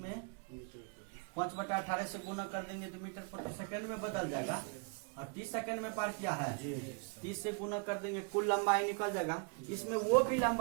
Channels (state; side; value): quieter; left; 36.7 dB